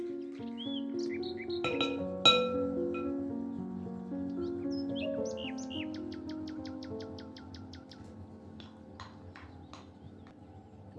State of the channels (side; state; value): both; identical; correlation 1.00